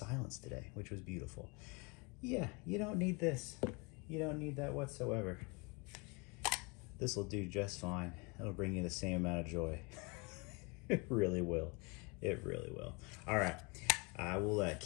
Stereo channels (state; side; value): quieter; right; 30.1 dB